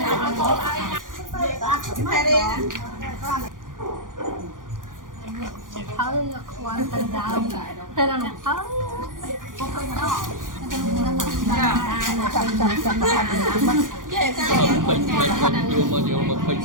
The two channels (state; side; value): late; left; 0.89 ms